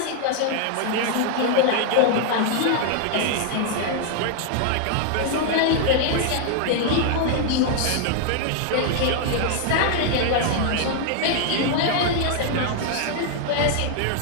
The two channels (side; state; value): both; different; correlation 0.00